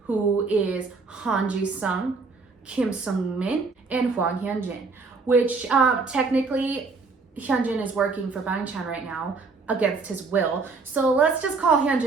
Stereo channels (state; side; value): quieter; left; 4.3 dB